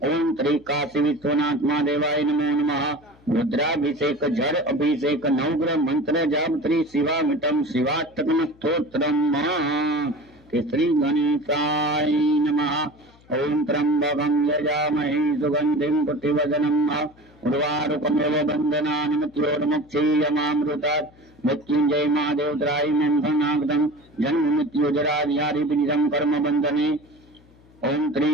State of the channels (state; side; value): noise; left; hum, 28 dB below the sound